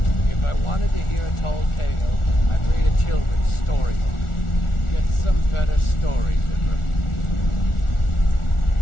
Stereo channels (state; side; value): late; right; 1.4 ms